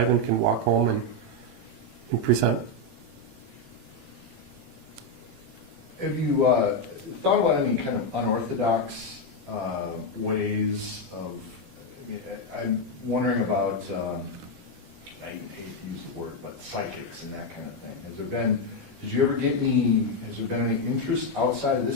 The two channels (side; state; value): left; late; 18 ms